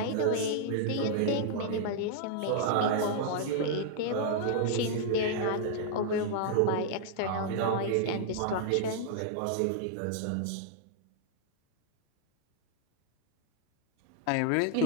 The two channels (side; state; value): both; different; correlation -0.01